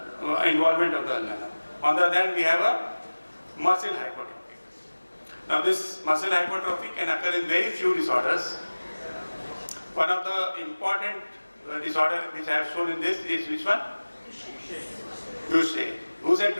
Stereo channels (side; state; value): both; inverted; correlation -1.00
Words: involvement of the ulna. On the other hand, we have a muscle hypertrophy. Now this muscle hypertrophy can occur in very few disorders. One of the important disorder which I have shown in this is which one? Duchenne. Who said